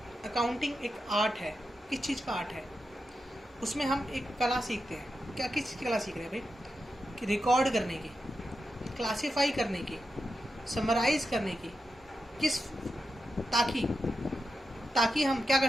accounting एक आर्ट है। किस चीज़ का आर्ट है? उसमें हम एक कला सीखते हैं। क्या किस चीज़ की कला सीख रहे हैं भाई? कि रिकॉर्ड करने की, क्लासीफाई करने की, समराइज करने की, किस ताकि ताकि हम क्या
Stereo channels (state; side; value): normal; both; correlation 0.88